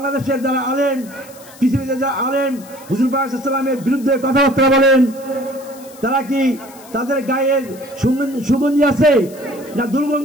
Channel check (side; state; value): left; noise; hiss, 21 dB below the sound